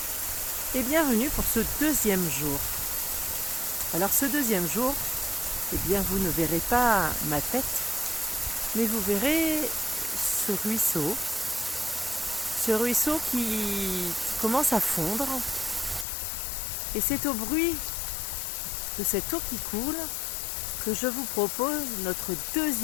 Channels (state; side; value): drops out; right; at 16.1 s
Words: et bienvenue pour ce deuxième jour. Alors ce deuxième jour, vous ne verrez pas ma tête, mais vous verrez ce ruisseau qui commence à fondre. Et c'est au bruit de cette eau qui coule que je vous propose notre